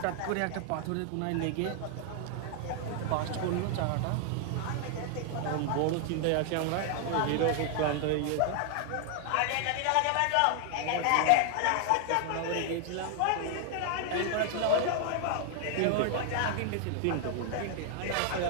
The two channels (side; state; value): both; different; correlation 0.00